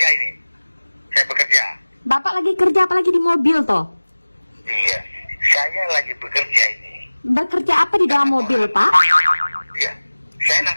ini. Saya bekerja. Bapak lagi kerja apalagi di mobil toh? Iya. Saya lagi bekerja ini. Bekerja apa di dalam mobil Pak? Iya. Saya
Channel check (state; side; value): inverted; both; correlation -1.00